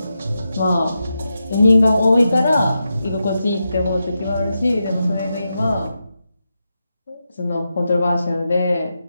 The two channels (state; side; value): inverted; both; correlation -0.88